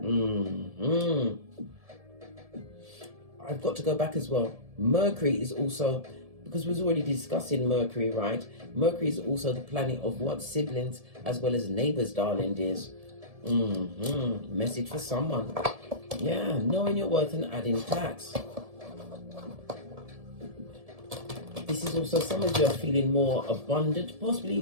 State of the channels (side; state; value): left; late; 1.7 ms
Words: I've got to go back as well. Mercury is also, because we was already discussing Mercury, right? Mercury is also the planet of what? Siblings as well as neighbors, darling dears. Message for someone. Yeah, knowing your worth and adding tax. This is also, some of you are feeling more abundant, possibly